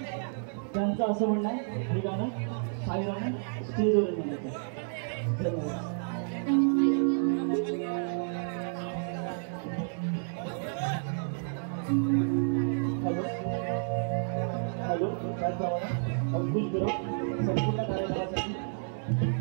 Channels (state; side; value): silent; left; digital silence